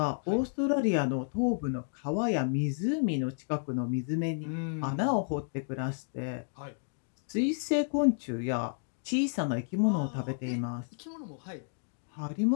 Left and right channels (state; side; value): silent; right; digital silence